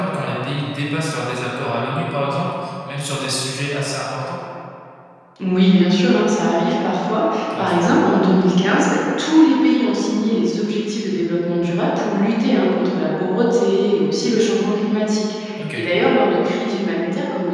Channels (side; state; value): both; identical; correlation 1.00